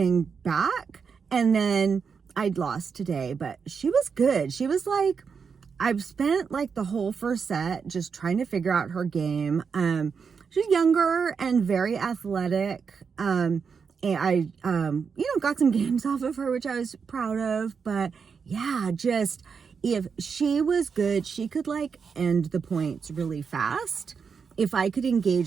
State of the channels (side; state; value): left; quieter; 5.9 dB